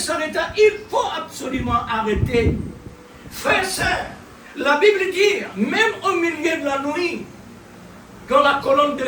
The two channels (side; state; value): both; identical; correlation 1.00